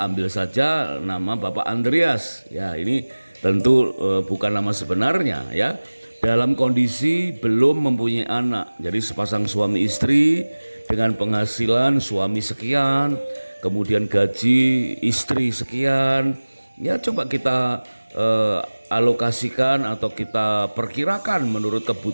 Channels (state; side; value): inverted; both; correlation -1.00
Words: Ambil saja nama Bapak Andreas. Ya, ini tentu bukan nama sebenarnya ya. Dalam kondisi belum mempunyai anak. Jadi sepasang suami istri dengan penghasilan suami sekian, kemudian gaji istri sekian. Ya, coba kita alokasikan atau kita perkirakan menurut